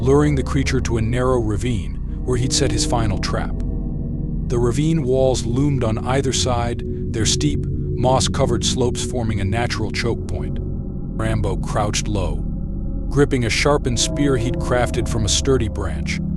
the creature to a narrow ravine where he'd set his final trap. The ravine walls loomed on either side, their steep, moss-covered slopes forming a natural choke point. Rambo crouched low, gripping a sharpened spear he'd crafted from a sturdy branch,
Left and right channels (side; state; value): both; identical; correlation 1.00